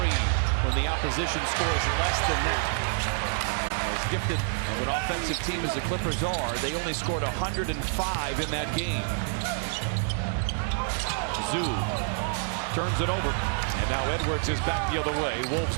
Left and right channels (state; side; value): silent; left; digital silence